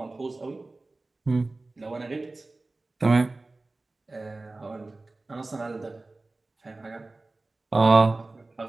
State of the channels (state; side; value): quieter; left; 3.2 dB